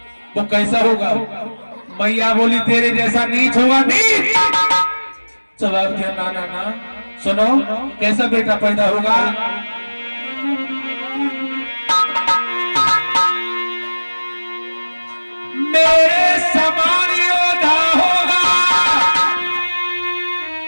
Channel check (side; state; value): both; inverted; correlation -1.00